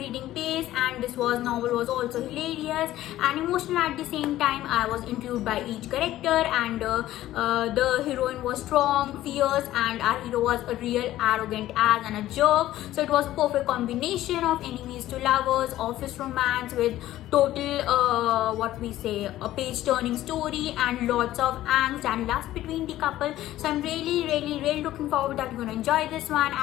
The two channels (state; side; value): quieter; right; 14.4 dB